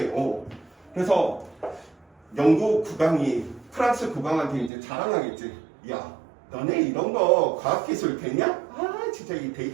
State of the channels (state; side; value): drops out; left; at 4.7 s